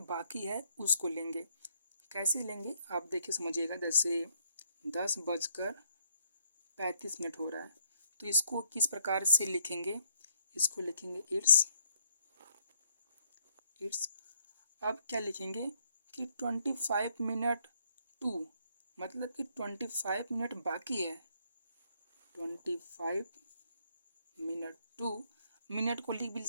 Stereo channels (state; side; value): inverted; both; correlation -0.70